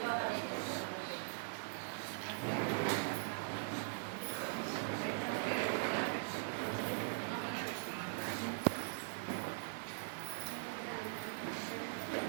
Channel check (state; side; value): silent; left; digital silence